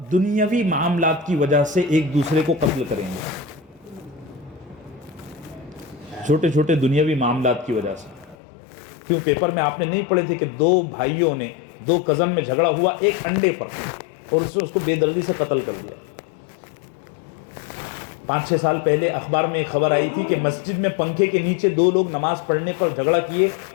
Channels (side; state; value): right; drops out; at 8.3 s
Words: دنیاوی معاملات کی وجہ سے ایک دوسرے کو قتل کریں گے. چھوٹے چھوٹے دنیاوی معاملات کی وجہ سے. کیوں پیپر میں آپ نے نہیں پڑھے تھے کہ 2 بھائیوں نے, 2 کزن میں جھگڑا ہوا ایک انڈے پر, اور اس نے اس کو بے دردی سے قتل کر دیا. 5-6 سال پہلے اخبار میں ایک خبر آئی تھی کہ مسجد میں پنکھے کے نیچے 2 لوگ نماز پڑھنے پر جھگڑا کیے,